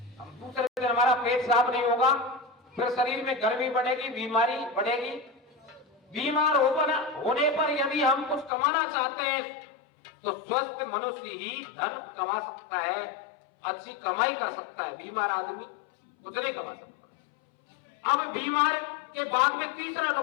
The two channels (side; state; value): right; drops out; at 8.5 s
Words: दूसरे दिन हमारा पेट साफ नहीं होगा, फिर शरीर में गर्मी बढ़ेगी, बीमारी बढ़ेगी। बीमार होने पर यदि हम कुछ कमाना चाहते हैं तो स्वस्थ मनुष्य ही धन कमा सकता है, अच्छी कमाई कर सकता है। बीमार आदमी कुछ नहीं कमा सकता। अब बीमार के बाद में तीसरा